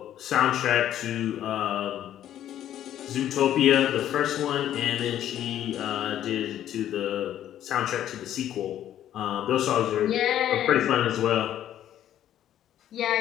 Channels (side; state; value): right; quieter; 11.4 dB